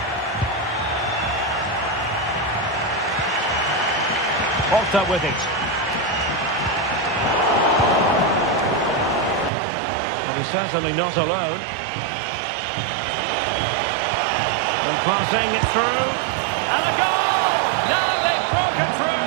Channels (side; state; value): left; drops out; at 9.5 s